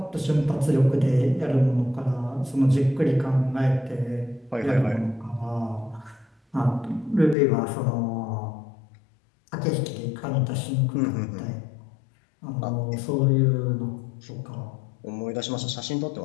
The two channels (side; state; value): right; drops out; at 7.4 s